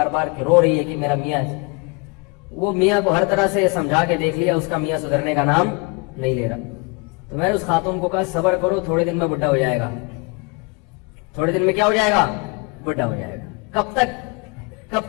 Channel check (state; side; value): quieter; right; 29.2 dB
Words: بار کہ رو رہی ہے کہ میرا میاں ہے. وہ میاں کو ہر طرح سے سمجھا کے دیکھ لیا, اس کا میاں سدھرنے کا نام نہیں لے رہا. تو میں نے اس خاتون کو کہا صبر کرو, تھوڑے دن میں بڈھا ہو جائے گا, تھوڑے دن میں کیا ہو جائے گا, بڈھا ہو جائے گا. کب